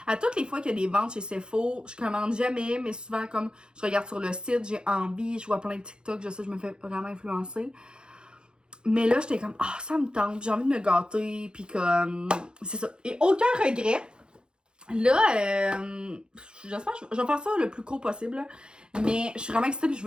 À toutes les fois qu'il y a des ventes chez Sephora, je commande jamais, mais souvent, comme je regarde sur le site, j'ai envie, je vois plein de TikTok, je sais, je me fais vraiment influencer. Mais là, j'étais comme, ah, ça me tente, j'ai envie de me gâter, puis comme, c'est ça. Et aucun regret. Là, j'espère que je vais faire ça le plus court possible, là. Mais je suis vraiment excitée et je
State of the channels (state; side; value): late; left; 0.049 ms